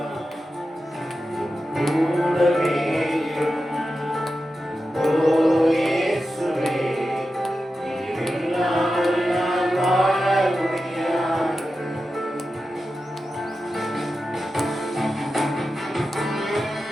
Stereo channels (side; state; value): both; normal; correlation 0.91